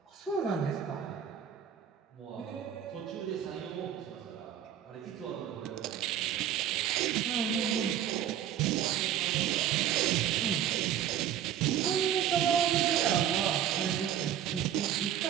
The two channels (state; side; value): quieter; left; 10.0 dB